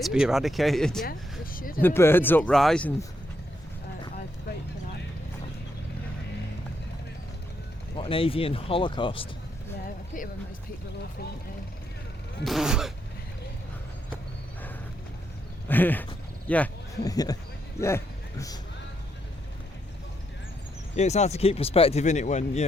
to be eradicated. Yeah, we should. The birds uprising. I'd vote for that. What an avian holocaust. Yeah, I pity when most people are awful, aren't they? Yeah. Yeah. Yeah, it's hard to keep perspective in it when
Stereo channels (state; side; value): normal; both; correlation 0.78